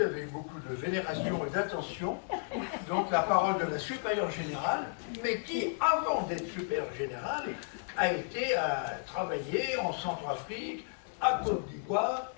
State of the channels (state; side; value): silent; right; digital silence